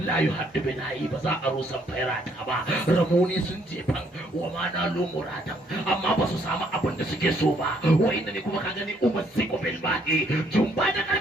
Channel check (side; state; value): both; normal; correlation 0.68